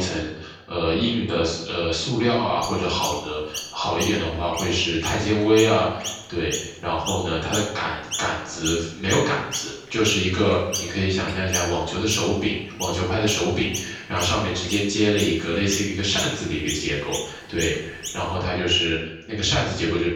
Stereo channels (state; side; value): identical; both; correlation 1.00